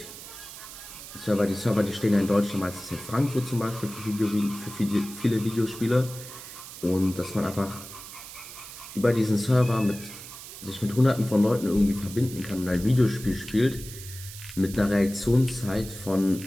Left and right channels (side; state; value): right; noise; hiss, 13 dB below the sound